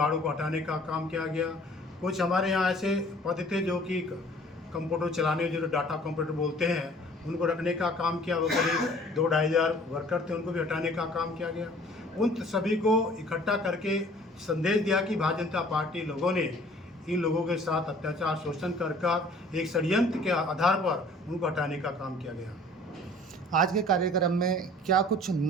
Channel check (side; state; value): both; normal; correlation 0.52